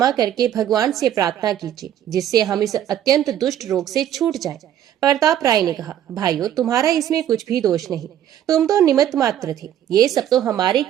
करके भगवान से प्रार्थना कीजिए जिससे हम इस अत्यंत दुष्ट रोग से छूट जाएं। प्रताप राय ने कहा, भाइयों, तुम्हारा इसमें कुछ भी दोष नहीं। तुम तो निमित्त मात्र थे। ये सब तो हमारे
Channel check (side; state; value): left; quieter; 10.8 dB